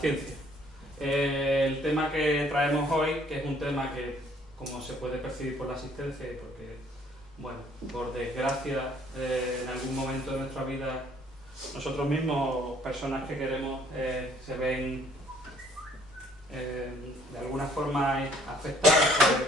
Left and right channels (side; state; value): both; normal; correlation 0.61